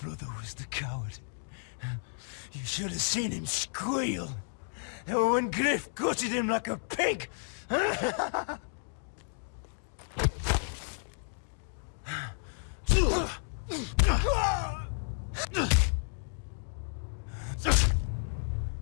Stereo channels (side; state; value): right; silent; digital silence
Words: was the coward. You should have seen him squeal. When Griff gutted him like a pig.